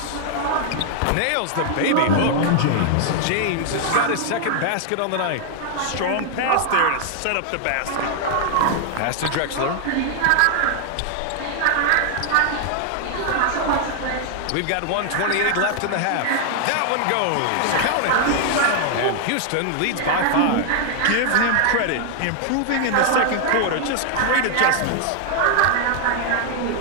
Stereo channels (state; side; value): different; both; correlation 0.00